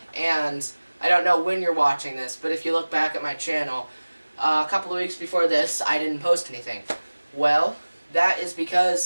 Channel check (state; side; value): inverted; both; correlation -1.00